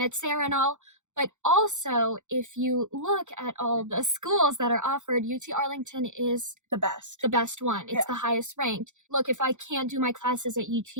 Sarah and all. But also, if you look at all the schools that are offered, UT Arlington is the best one. It's the highest ranked. Look, if I can't do my classes at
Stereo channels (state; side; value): late; left; 0.85 ms